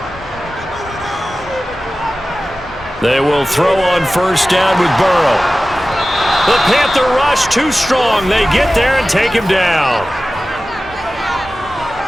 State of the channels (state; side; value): normal; both; correlation 0.96